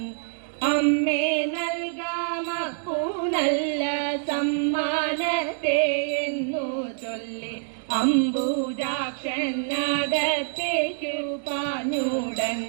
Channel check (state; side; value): silent; left; digital silence